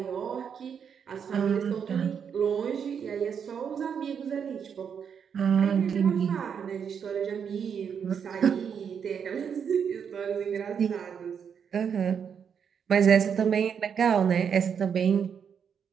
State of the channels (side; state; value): left; quieter; 7.3 dB